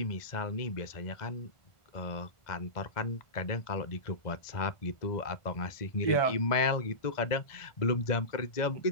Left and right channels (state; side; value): late; right; 1.5 ms